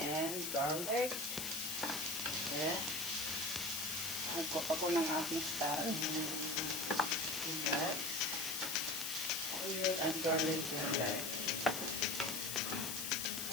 garlic. Yeah. Nagkop ako ng aking style. Guys. Onion and garlic, guys.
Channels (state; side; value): noise; left; hiss, 3 dB below the sound